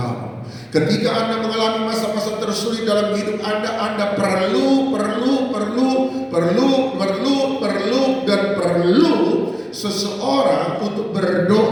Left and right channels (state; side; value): identical; both; correlation 1.00